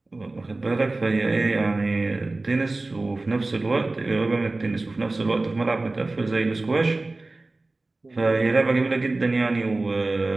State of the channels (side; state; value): left; quieter; 3.1 dB